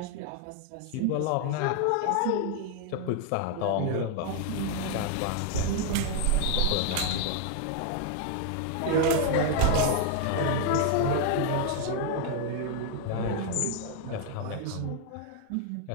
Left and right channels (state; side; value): different; both; correlation 0.00